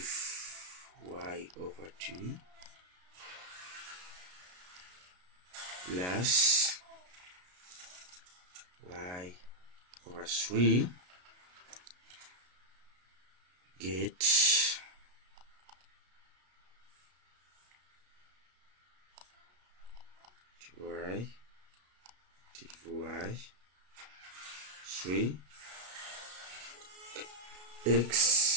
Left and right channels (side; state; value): left; late; 33 ms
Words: y over 2 plus y over 3 get y 3